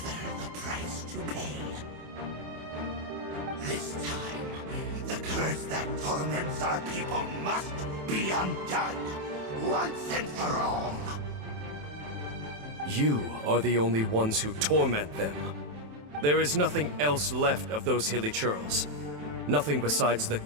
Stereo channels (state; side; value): late; left; 27 ms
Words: the price to pay. This time, the curse that torments our people must be undone, once and for all. You are the only ones who torment them. There is nothing else left of those hilly churls. Nothing besides the